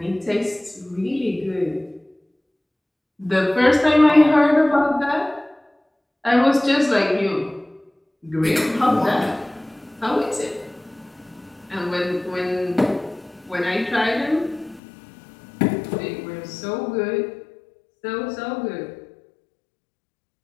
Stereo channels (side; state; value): right; drops out; at 14.8 s